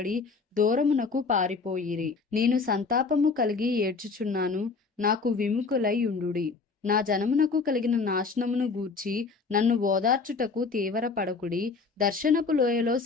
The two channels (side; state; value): right; quieter; 4.5 dB